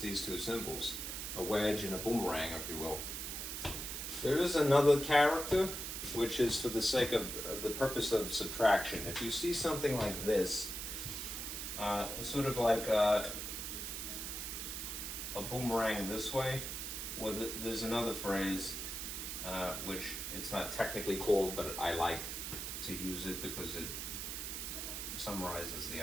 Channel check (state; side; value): noise; right; hiss, 5 dB below the sound